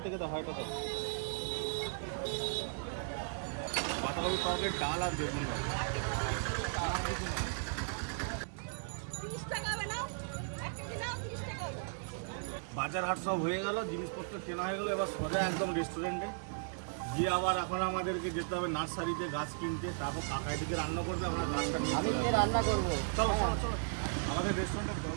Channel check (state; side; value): silent; left; 54 dB below the other